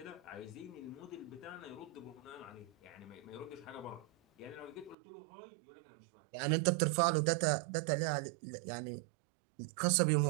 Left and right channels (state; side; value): drops out; left; at 5.0 s